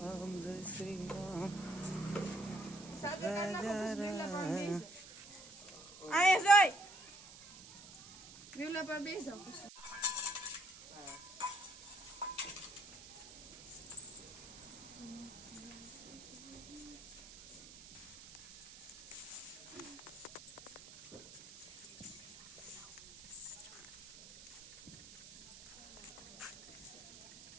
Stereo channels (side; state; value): right; noise; hiss, 16 dB below the sound